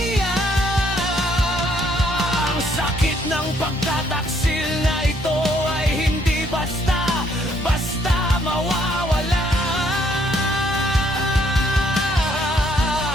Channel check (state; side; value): normal; both; correlation 0.68